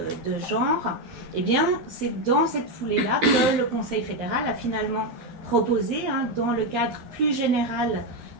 de genre, eh bien c'est dans cette foulée-là que le Conseil fédéral a finalement proposé, dans le cadre plus général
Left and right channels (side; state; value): left; late; 12 ms